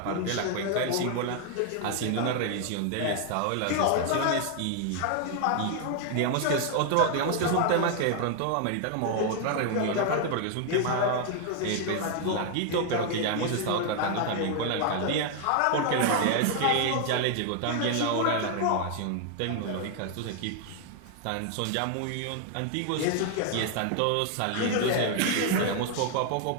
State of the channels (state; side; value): different; both; correlation 0.00